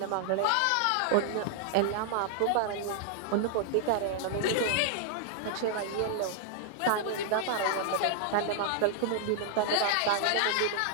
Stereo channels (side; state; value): both; different; correlation -0.01